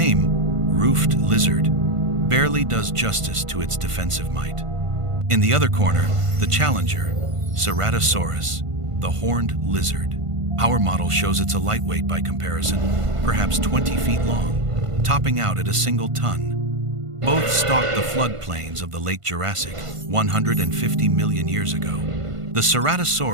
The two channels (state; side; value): late; left; 1.5 ms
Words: Roofed Lizard, barely does justice to its defensive might. In the other corner, the challenger, Ceratosaurus, the horned lizard. Our model shows it's a lightweight by comparison, perhaps 20 feet long, topping out at a single ton. Both stalked the floodplains of the late Jurassic 150 million years ago. The